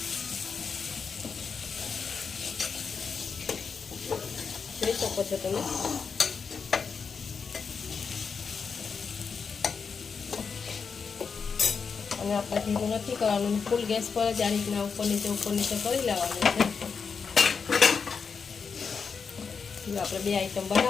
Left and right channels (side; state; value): right; quieter; 5.7 dB